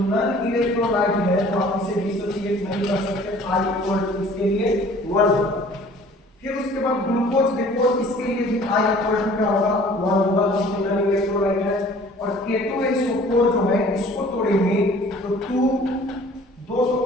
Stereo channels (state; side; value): normal; both; correlation 0.51